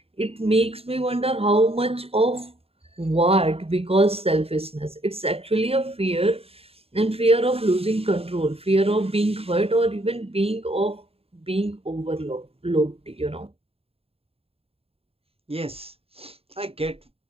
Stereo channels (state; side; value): late; left; 0.28 ms